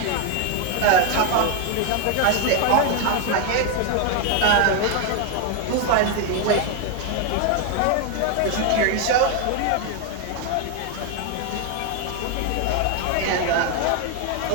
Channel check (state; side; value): different; both; correlation 0.01